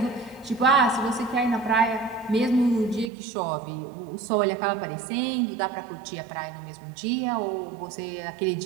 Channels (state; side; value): drops out; left; at 3.1 s